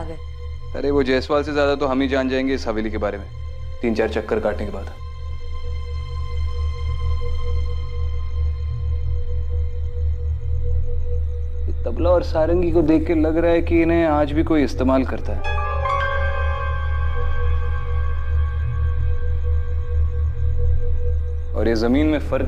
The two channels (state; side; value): identical; both; correlation 1.00